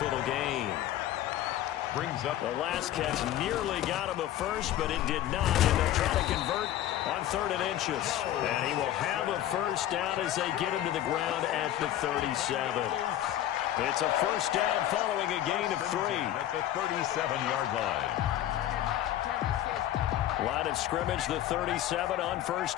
little gain. Brings up the last catch nearly got him a first, but it did not. And they'll try to convert on 3rd and inches. And he will have a first down as they get him to the ground at the 37. It's a first down following a gain of 3. At the 37-yard line. Line of scrimmage, the 37 on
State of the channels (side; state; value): right; quieter; 12.6 dB